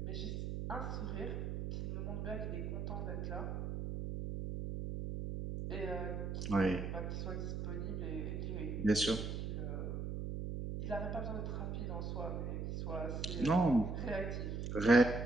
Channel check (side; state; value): right; noise; hum, 3 dB below the sound